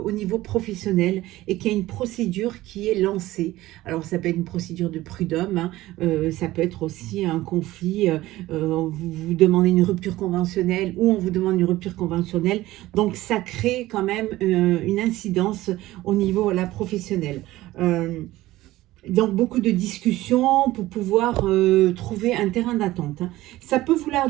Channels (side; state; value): left; quieter; 16.8 dB